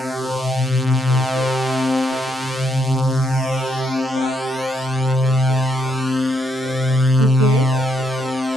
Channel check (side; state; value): both; normal; correlation 0.75